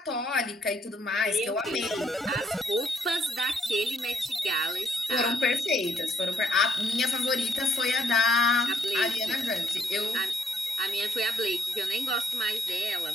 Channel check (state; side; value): normal; both; correlation 0.70